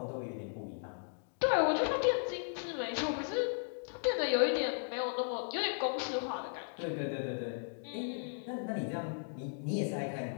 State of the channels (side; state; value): right; silent; digital silence